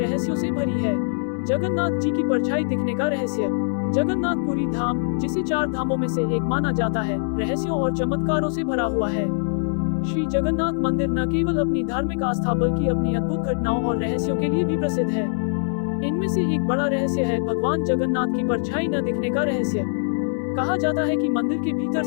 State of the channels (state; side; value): silent; right; digital silence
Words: से भरी है। जगन्नाथ जी की परछाई दिखने का रहस्य। जगन्नाथपुरी धाम, जिसे 4 धामों में से एक माना जाता है, रहस्यों और चमत्कारों से भरा हुआ है। श्री जगन्नाथ मंदिर न केवल अपनी धार्मिक आस्था बल्कि अपनी अद्भुत घटनाओं और रहस्यों के लिए भी प्रसिद्ध है। इनमें से एक बड़ा रहस्य है भगवान जगन्नाथ की परछाई न दिखने का रहस्य। कहा जाता है कि मंदिर के भीतर